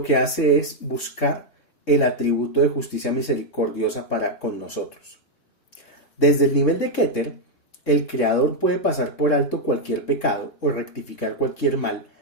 que hace es buscar el atributo de justicia misericordiosa para con nosotros. Desde el nivel de Keter, el Creador puede pasar por alto cualquier pecado o rectificar cualquier mal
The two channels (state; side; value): late; right; 3.7 ms